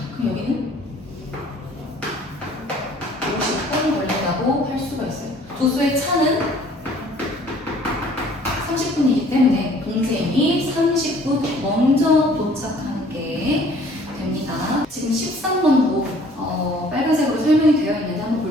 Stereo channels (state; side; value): normal; both; correlation 0.55